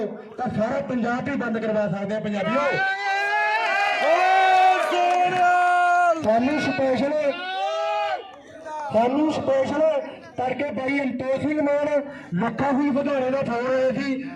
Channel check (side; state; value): both; identical; correlation 1.00